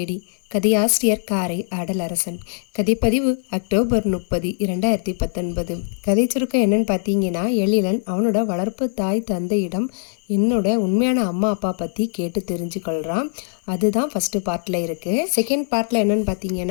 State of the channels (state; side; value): silent; right; 63 dB below the other